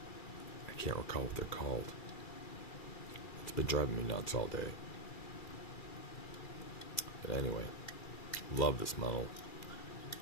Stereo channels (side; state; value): right; late; 2.3 ms